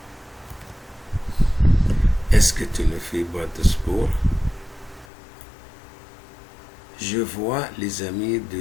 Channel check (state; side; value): drops out; right; at 5.1 s